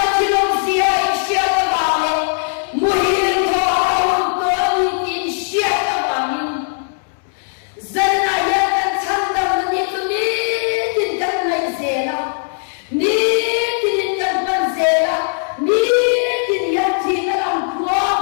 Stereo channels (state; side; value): silent; right; 67 dB below the other